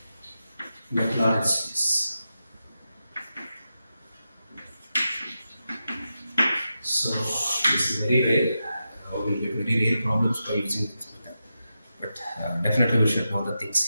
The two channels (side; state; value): both; inverted; correlation -0.89